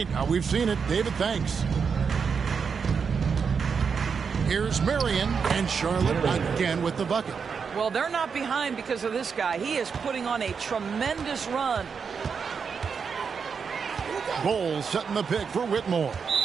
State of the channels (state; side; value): quieter; left; 6.0 dB